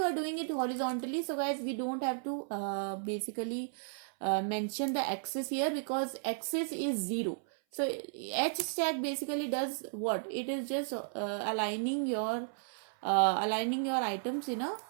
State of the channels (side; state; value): left; silent; 55 dB below the other